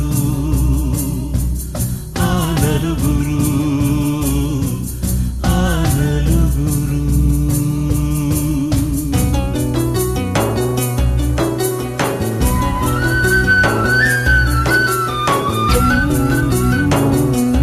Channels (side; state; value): both; identical; correlation 1.00